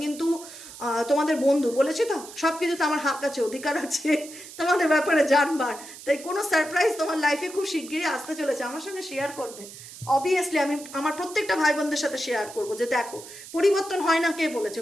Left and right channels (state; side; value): noise; right; hiss, 15 dB below the sound